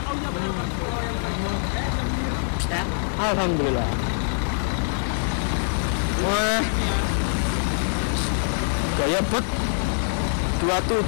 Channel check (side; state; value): right; silent; 58 dB below the other